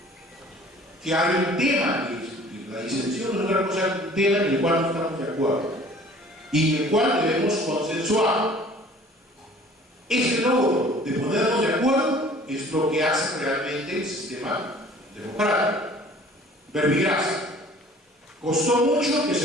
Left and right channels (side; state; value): both; normal; correlation 0.50